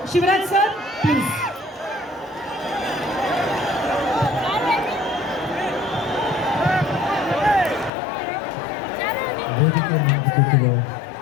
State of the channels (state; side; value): drops out; right; at 7.9 s